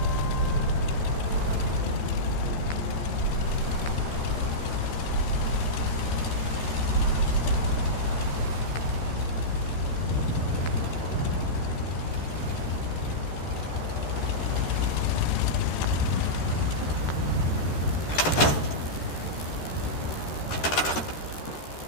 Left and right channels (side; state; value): right; late; 13 ms